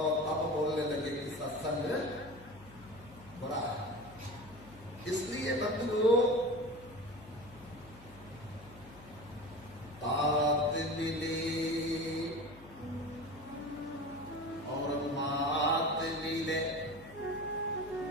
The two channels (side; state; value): left; noise; hum, 19 dB below the sound